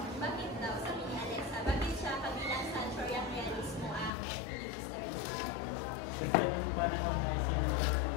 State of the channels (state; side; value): drops out; right; at 4.1 s